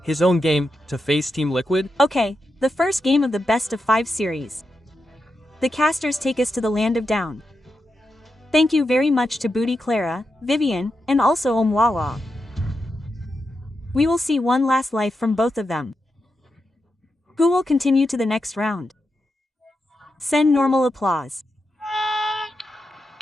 his own game, to face Team Liquid? Okay, the first game of the best of 5 series. The casters take us to the land of down. Thank you very much to Booty Clara, Vivian, and also Omwawa. We will see one last life from both of them. Who will continue to the next round? Send normal applause.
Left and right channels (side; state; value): both; normal; correlation 0.87